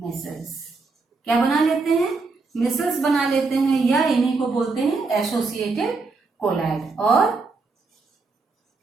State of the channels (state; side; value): quieter; left; 4.0 dB